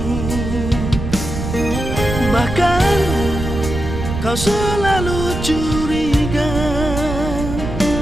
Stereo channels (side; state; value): right; noise; rumble, 5 dB below the sound